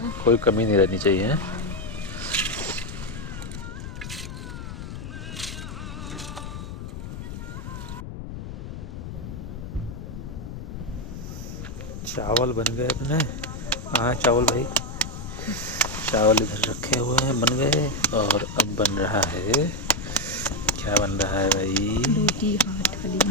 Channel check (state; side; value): noise; left; rumble, 9 dB below the sound